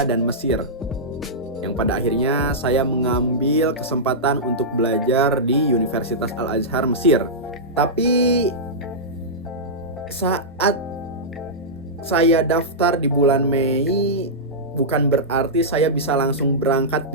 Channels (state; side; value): normal; both; correlation -0.13